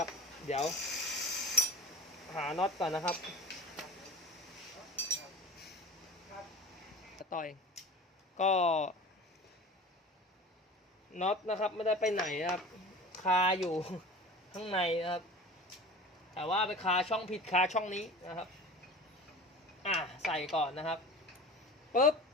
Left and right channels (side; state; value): both; normal; correlation 0.37